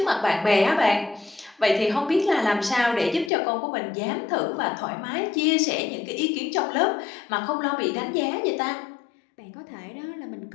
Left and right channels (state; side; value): drops out; right; at 3.3 s